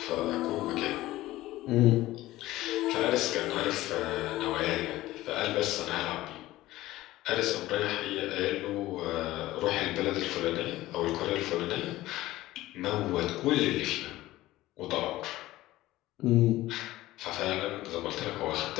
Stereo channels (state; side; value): quieter; right; 16.6 dB